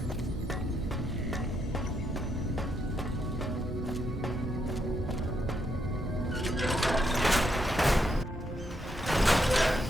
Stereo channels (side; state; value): both; normal; correlation 0.78